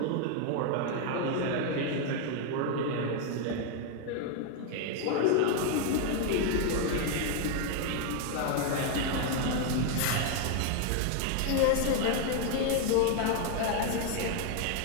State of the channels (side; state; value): both; different; correlation 0.01